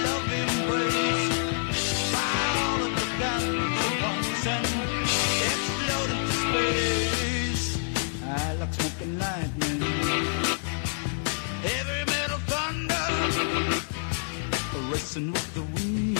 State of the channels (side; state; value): right; silent; digital silence